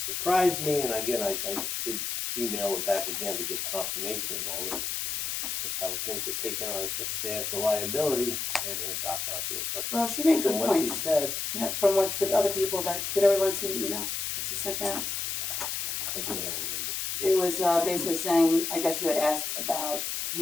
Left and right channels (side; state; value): left; noise; hiss, 2 dB below the sound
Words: me, and again, I did email it back again to get confirmation of all this, because I would think they're taking on a substantial liability and then dock onto it, but Well, she made good from what she points. said, Yeah, from what the other people did everyone see the email that she sent out? I do know. It was basically saying, I guess you had asked about